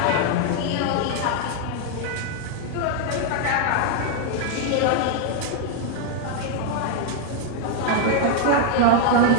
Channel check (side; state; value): both; different; correlation 0.00